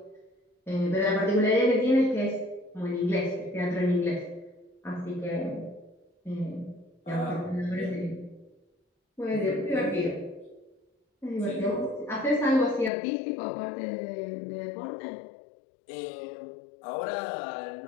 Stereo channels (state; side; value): drops out; right; at 12.9 s